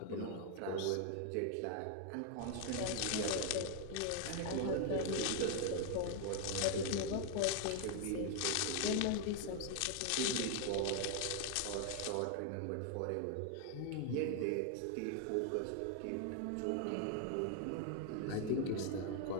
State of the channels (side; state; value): both; different; correlation 0.00